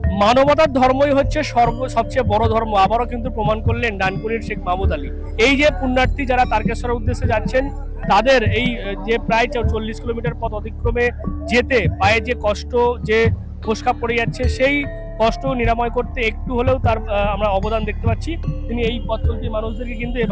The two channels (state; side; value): identical; both; correlation 1.00